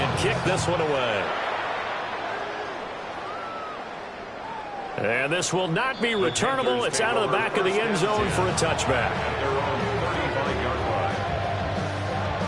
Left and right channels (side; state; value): both; identical; correlation 1.00